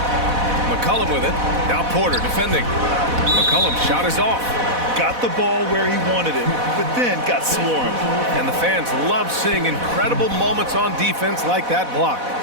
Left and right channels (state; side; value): late; left; 4.1 ms